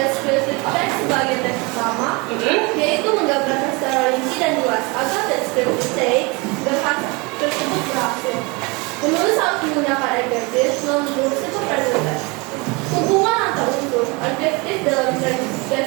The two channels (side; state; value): left; quieter; 27.6 dB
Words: text sebagai teks utama, yaitu menggambarkan secara rinci dan luas agar descriptive text tersebut berhasil. Menulis harus menggunakan adjective, noun group, simple present tense. Hubungan antar unsur adjektif dalam